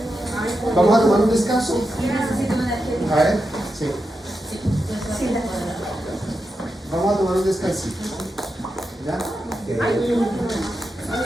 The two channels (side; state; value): both; normal; correlation 0.88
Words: ¿Vamos a tomar un descanso? A ver, sí. Vamos a tomar un descansito. ¿Ya?